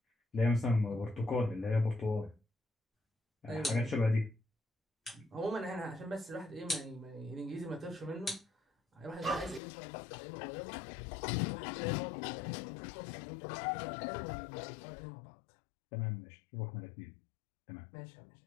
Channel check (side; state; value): right; drops out; at 9.6 s